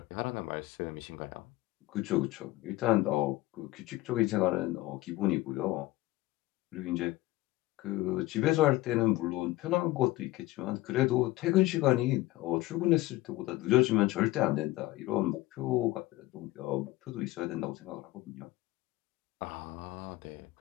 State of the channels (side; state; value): right; quieter; 18.0 dB